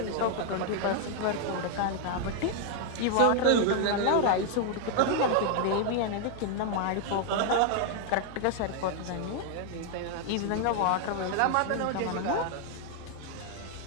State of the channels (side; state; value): both; different; correlation 0.00